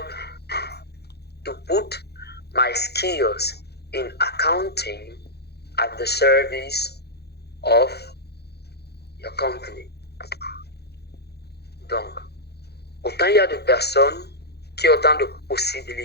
to put my skills in accounting at the service of your company. Donc, autant il y a de personnes qui ont autant de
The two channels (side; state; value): right; late; 0.48 ms